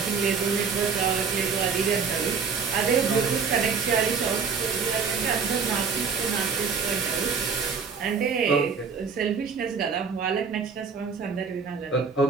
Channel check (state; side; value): quieter; left; 5.7 dB